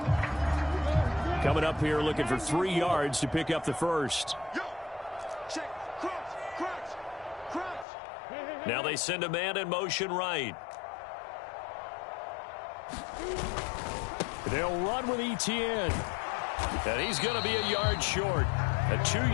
Coming up here looking for 3 yards to pick up the first. Now they send a man in motion right. They'll run with Etienne. And he's going to be a yard short. A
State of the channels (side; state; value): right; drops out; at 7.9 s